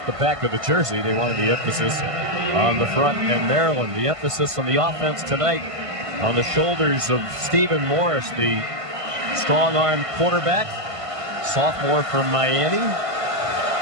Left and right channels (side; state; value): left; late; 1.5 ms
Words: the back of the jersey. They wanted the emphasis on the front. And Maryland, the emphasis on the offense tonight on the shoulders of Stephen Morris, the strong-arm quarterback, sophomore from Miami.